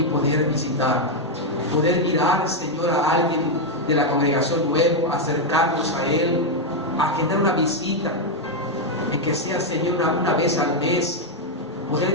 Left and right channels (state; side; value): normal; both; correlation 0.01